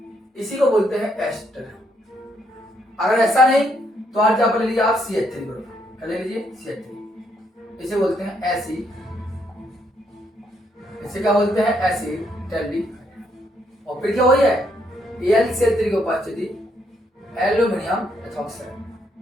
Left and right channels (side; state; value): both; normal; correlation 0.74